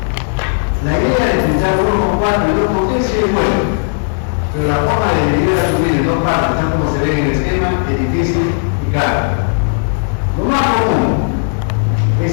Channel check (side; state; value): right; silent; digital silence